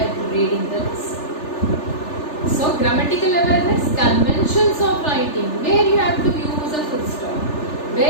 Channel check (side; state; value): right; late; 3.4 ms